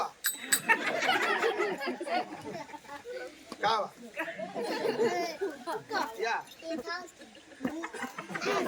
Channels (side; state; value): both; identical; correlation 1.00